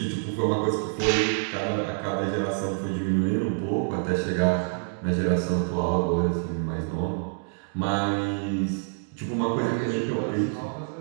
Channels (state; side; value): silent; left; 60 dB below the other